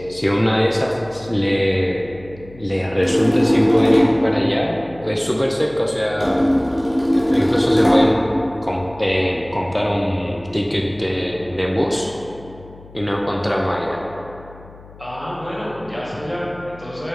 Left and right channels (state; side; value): noise; left; hum, 21 dB below the sound